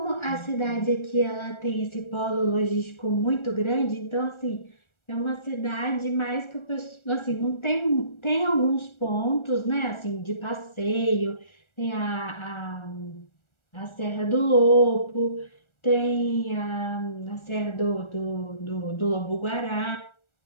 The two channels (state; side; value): late; right; 1.4 ms